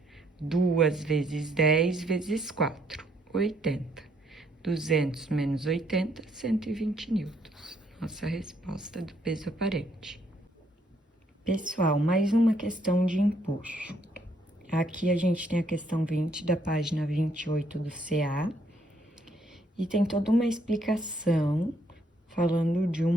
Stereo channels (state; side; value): normal; both; correlation 0.70